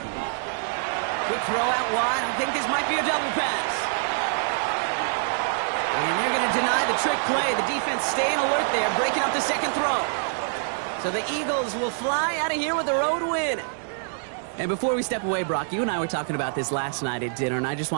Quick throw out wide. I think this might be a double pass. And they're going to deny the trick play. The defense staying alert there, breaking up the 2nd throw. So the Eagles will fly out of here with a road win. And before we step away, Brock, you and I were talking about this last night at dinner, and I just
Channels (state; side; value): silent; left; 61 dB below the other